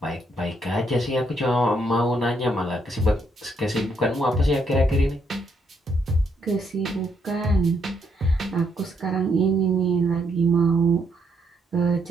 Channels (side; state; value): both; normal; correlation 0.74